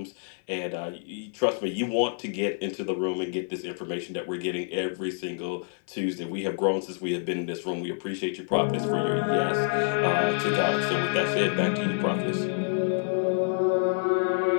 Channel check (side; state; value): right; silent; 60 dB below the other